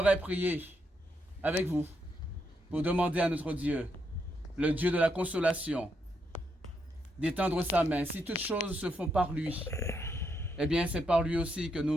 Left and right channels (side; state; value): both; normal; correlation 0.79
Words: prier avec vous pour demander à notre Dieu, le Dieu de la consolation, d'étendre sa main. Si toutes choses se font par lui, eh bien c'est par lui aussi que